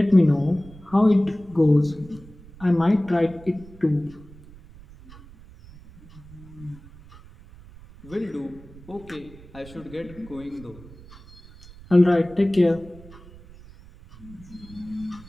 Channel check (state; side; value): noise; right; rumble, 20 dB below the sound